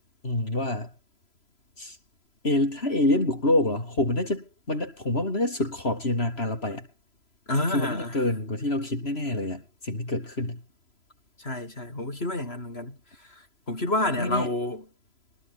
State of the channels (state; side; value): late; right; 3.0 ms